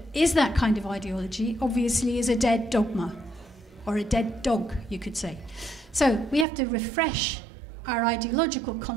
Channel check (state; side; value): drops out; left; at 6.5 s